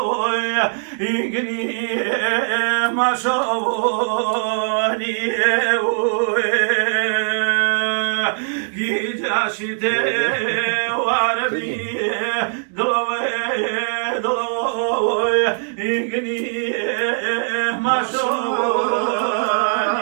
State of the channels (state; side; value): silent; left; 65 dB below the other